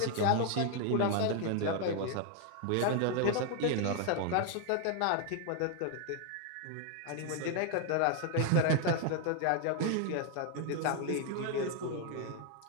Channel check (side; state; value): both; different; correlation 0.00